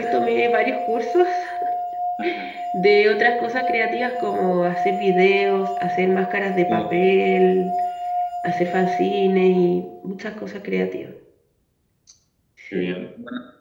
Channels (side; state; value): both; identical; correlation 1.00